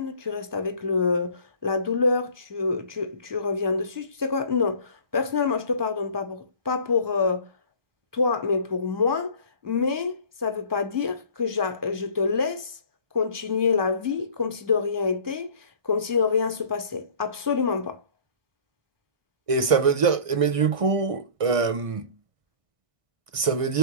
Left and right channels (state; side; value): late; left; 1.6 ms